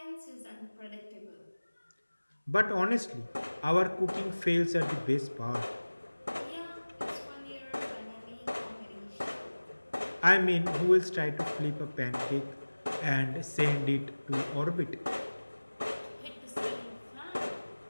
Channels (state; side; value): inverted; both; correlation -1.00